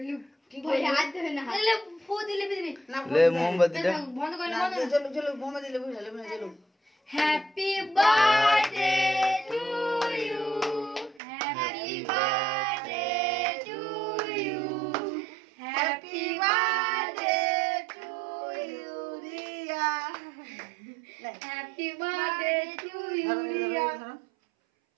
भाई हाथ धोए ना ले फू दिले बिजली ले मोमबत्ती ले बंद कर না চলো চলো বোমা দিলে বুঝালে না চলো happy birthday to you happy birthday to you happy birthday to you Riya happy birthday to you Riya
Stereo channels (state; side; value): drops out; left; at 11.2 s